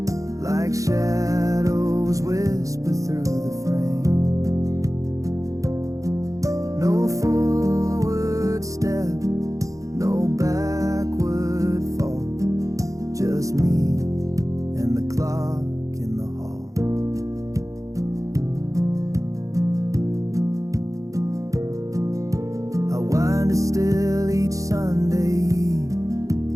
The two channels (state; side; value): late; left; 0.16 ms